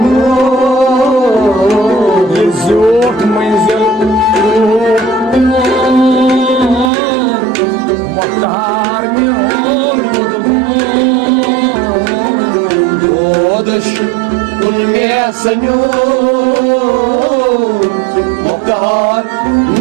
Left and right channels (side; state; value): left; drops out; at 6.9 s